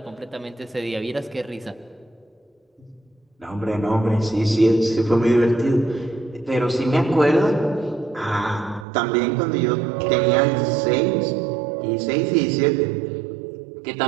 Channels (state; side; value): drops out; left; at 8.8 s